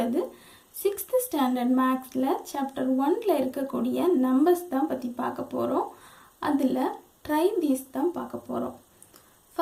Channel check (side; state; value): both; identical; correlation 1.00